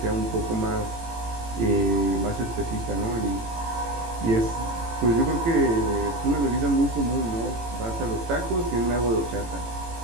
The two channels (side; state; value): left; late; 18 ms